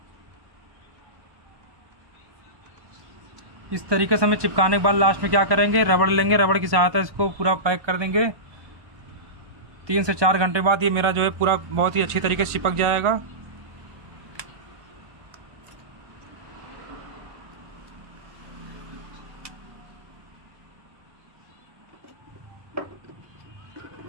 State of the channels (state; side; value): late; left; 1.1 ms